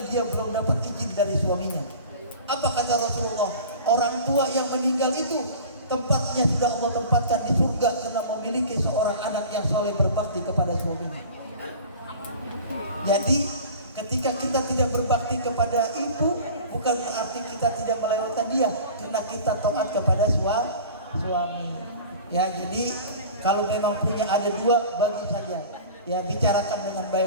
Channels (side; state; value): both; inverted; correlation -0.40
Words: dia belum dapat izin dari suaminya. Apa kata Rasulullah? Orang tua yang meninggal itu tempatnya sudah Allah tempatkan di surga karena memiliki seorang anak yang soleh berbakti kepada suaminya. Jadi ketika kita tidak berbakti kepada ibu, bukan berarti kita tidak melewatkan dia, karena kita taat kepada suami. Ya, jadi kalau memang punya ada 2, bagi saja. Ya, bicarakan dengan